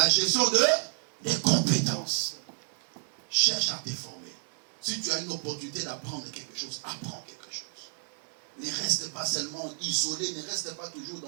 gestion des compétences. Cherche à te former. Si tu as une opportunité d'apprendre quelque chose, apprends quelque chose. Ne reste pas seulement isolé, ne reste pas toujours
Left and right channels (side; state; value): left; silent; 58 dB below the other